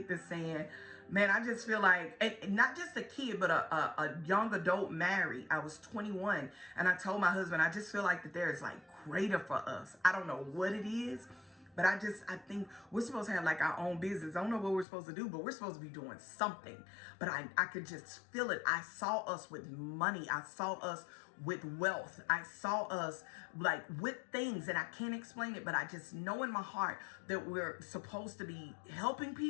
that's saying, man, I just feel like, and not just a kid, but a young adult married. I was 21 and I told my husband, I just feel like that there is like greater for us. I don't know what it is. But I think we're supposed to have like our own business. I don't know what we're supposed to do, but we're supposed to be doing something. But I could just feel it. I saw us with money. I saw us with wealth. I saw us like with things, and I can't explain it, but I just know in my heart that we're supposed to be helping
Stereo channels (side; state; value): right; drops out; at 14.9 s